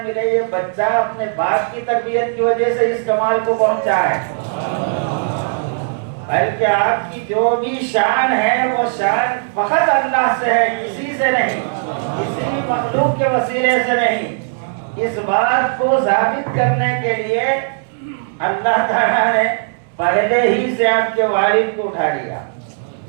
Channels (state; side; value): silent; left; digital silence